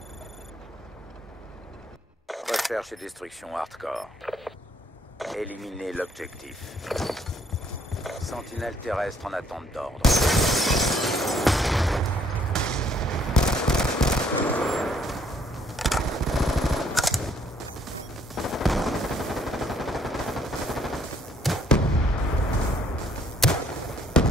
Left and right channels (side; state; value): both; normal; correlation 0.66